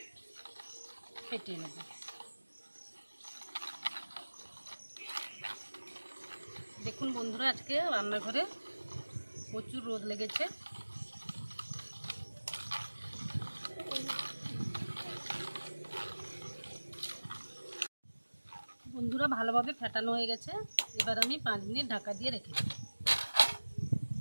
ফেটিয়ে নেব। দেখুন বন্ধুরা, আজকে রান্নাঘরে প্রচুর রোদ লেগেছে। বন্ধুরা, ভালোভাবে ফেটানো হয়ে গেছে। এবার আমি 5 মিনিট ঢাকা দিয়ে রেখে দেব।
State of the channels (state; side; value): inverted; both; correlation -1.00